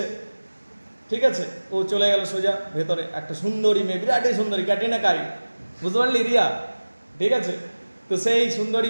ঠিক আছে। ও চলে গেল সোজা ভেতরে। একটা সুন্দরী মেয়ে, বিরাটই সুন্দরী, ক্যাটরিনা কাইফ, বুঝতে পারলি রিয়া, ঠিক আছে। তো সেই সুন্দরী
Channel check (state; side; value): inverted; both; correlation -1.00